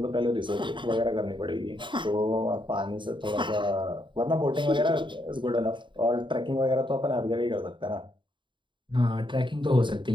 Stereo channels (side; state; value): left; late; 0.23 ms